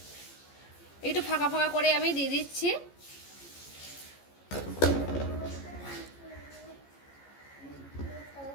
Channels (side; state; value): right; late; 14 ms